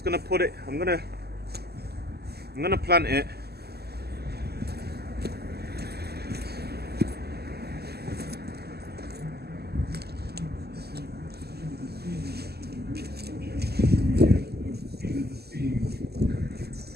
gonna put it, I'm gonna plant it.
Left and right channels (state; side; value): late; left; 0.46 ms